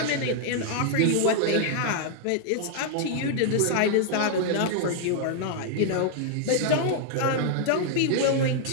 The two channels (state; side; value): different; both; correlation 0.00